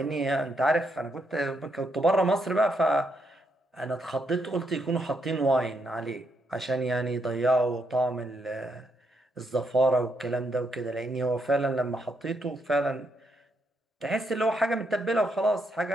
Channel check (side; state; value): both; normal; correlation 0.78